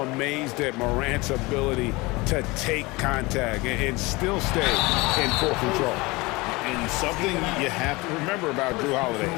at Morant's ability to take contact and still stay in full control. And something you have to remember about Drew Holiday,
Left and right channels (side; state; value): right; quieter; 23.4 dB